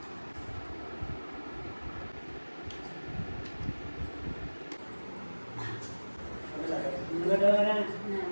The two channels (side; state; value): both; inverted; correlation -1.00